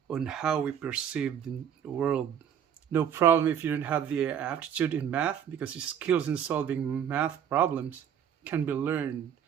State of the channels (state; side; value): quieter; left; 8.8 dB